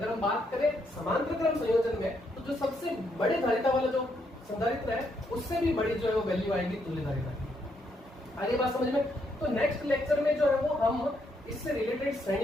हम बात करें समांतर क्रम संयोजन में, तो जो सबसे बड़े धारिता वाला जो संधारित्र है उससे भी बड़ी जो है वो वैल्यू आएगी तुल्य धारिता की। आगे बात समझ में। तो नेक्स्ट लेक्चर में जो है वो हम इससे रिलेटेड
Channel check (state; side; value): normal; both; correlation 0.75